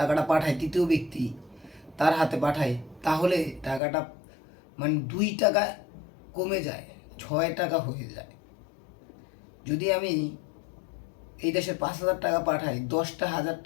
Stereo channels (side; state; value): right; drops out; at 3.8 s